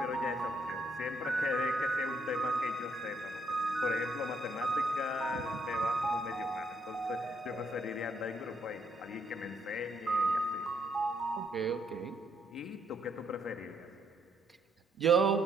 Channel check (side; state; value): both; normal; correlation 0.72